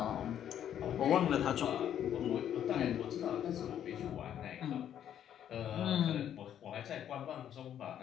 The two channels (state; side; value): quieter; right; 10.0 dB